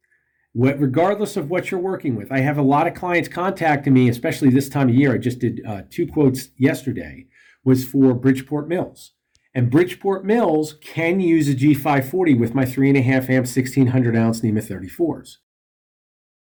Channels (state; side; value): identical; both; correlation 1.00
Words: Regardless of what you're working with. I have a lot of clients contacting me, especially this time of year. I just did 2 quotes yesterday, was for Bridgeport Mills. And Bridgeport Mills can use a G540 with my 3.5 amp 1600 ounce NEMA 34s.